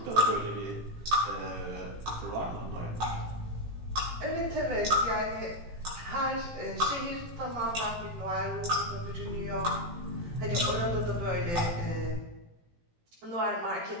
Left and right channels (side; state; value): left; late; 18 ms